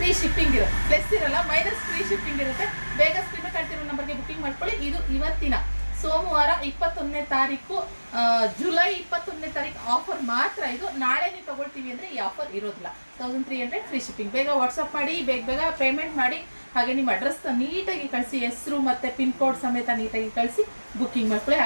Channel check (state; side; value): inverted; both; correlation -1.00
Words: ಶಿಪ್ಪಿಂಗ್ ಇರುತ್ತೆ. ಪ್ಲಸ್ ಇರಲ್ಲ, ಮೈನಸ್ ಫ್ರೀ ಶಿಪ್ಪಿಂಗ್ ಇರುತ್ತೆ. ಬೇಗ ಸ್ಕ್ರೀನ್ ಕಳ್ತಿರೋ ನಂಬರ್ಗೆ ಬುಕಿಂಗ್ ಮಾಡ್ಕೊಳ್ಳಿ. ಇದು ಇವತ್ತಿನ ಸೋಮವಾರ 21ನೇ ತಾರೀಕು, ಜುಲೈ 21ನೇ ತಾರೀಕು ಆಫರ್ ಮಾತ್ರ. ಇದು ನಾಳೆ ನೀವು ತಗೊಳ್ತೀವಿ ಅಂದ್ರೆ ಈ ಆಫರ್ ಇರೋದಿಲ್ಲ. 1300 ಫ್ರೀ ಶಿಪ್ಪಿಂಗ್. ಬೇಗ ವಾಟ್ಸಪ್ ಮಾಡಿ, ಬೇಗ ಪೇಮೆಂಟ್ ಮಾಡಿ. ಹಾಗೆ ನಿಮ್ಮ ಅಡ್ರೆಸ್ ನೀಟಾಗಿ ಕಳಿಸಿ, ಹೆಸರು ಮತ್ತೆ ಪಿನ್ ಕೋಡ್ ಸಮೇತ ನೀಟಾಗಿ ಕಳಿಸಿ ಬುಕಿಂಗ್ ಮಾಡ್ಕೊಳ್ಳಿ.